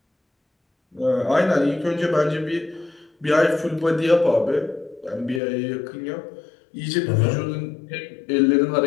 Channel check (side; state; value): right; drops out; at 5.4 s